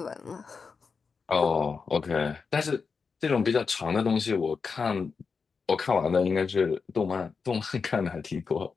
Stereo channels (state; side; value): quieter; right; 5.2 dB